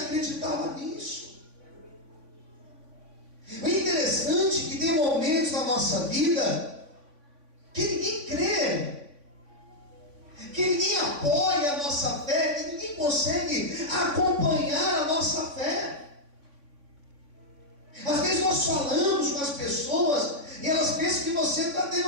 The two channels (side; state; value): left; late; 3.5 ms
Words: nisso. O interessante é que tem momentos na nossa vida que ninguém crê, que ninguém apoia a nossa fé, que ninguém consegue acompanhar a nossa fé. Às vezes nós falamos com as pessoas e elas pensam que você está tendo